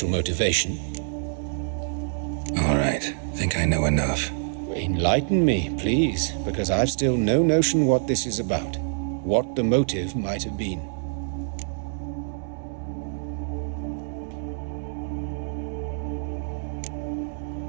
motivation. All right. Think I know enough. Enlighten me, please, because I've still no notion what this is about. What the motive might have been.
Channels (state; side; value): silent; left; 61 dB below the other